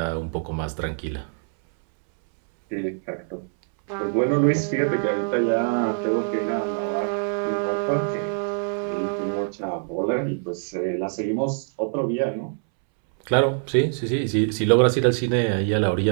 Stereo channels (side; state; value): left; silent; 63 dB below the other